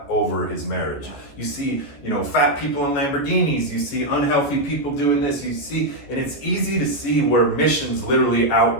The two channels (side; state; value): right; late; 14 ms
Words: over his marriage. You see, fat people in Lamborghinis, you see unhealthy people doing this, and it's easy to see where missions literally